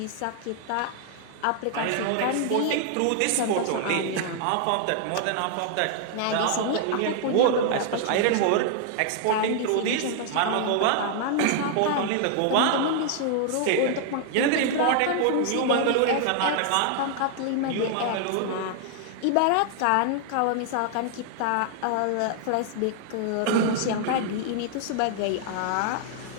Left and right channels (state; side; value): different; both; correlation 0.00